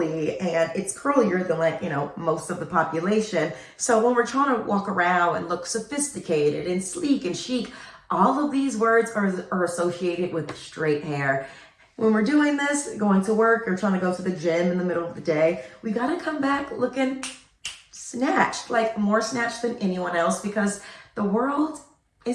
and it's curlier than like, you know, most of the population. So when we're trying to walk around and look sophisticated and sleek and chic, all of these words are associated with straight hair. When we're doing this, going to work or trying to go to the gym in the middle of the day, we gotta come back looking snatched, like more snatched than anyone else because the world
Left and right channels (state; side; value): identical; both; correlation 1.00